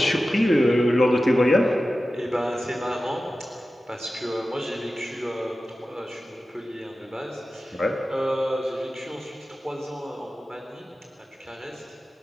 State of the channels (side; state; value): both; normal; correlation 0.94